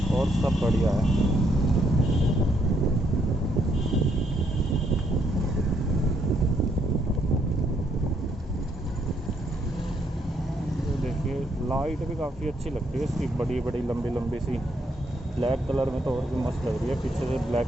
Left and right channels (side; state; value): both; normal; correlation 0.73